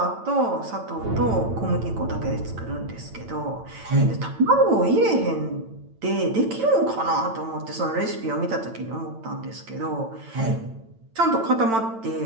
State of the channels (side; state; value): left; late; 8.9 ms